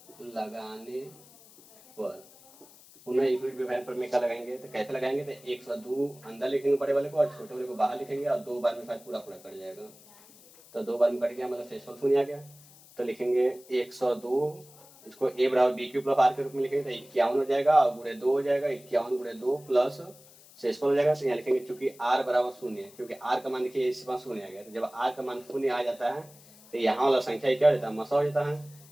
परमेका लगाएंगे। तो कैसे लगाएंगे तो 102 अंदर लिखेंगे बड़े वाले को और छोटे वाले को बाहर लिखेंगे और 2 बार में शायद पूरा कट जाएगा। तो 2 बार में कट गया मतलब शेषफल 0 आ गया। तो लिखेंगे 102 इसको ए बराबर बी क्यू प्लस आर के रूप में लिखेंगे तो 51 हो जाएगा और गुणे 2 हो जाएगा 51 गुणे 2 प्लस शेषफल हो जाएगा। तो यहाँ लिखेंगे चूंकि आर बराबर 0 है क्योंकि आर का मान देखिए इस बार 0 आ गया। तो जब आर का मान 0 आ जाता है तो यहाँ वाला संख्या क्या हो जाता है मसा हो जाता है,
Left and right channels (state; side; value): noise; left; hiss, 23 dB below the sound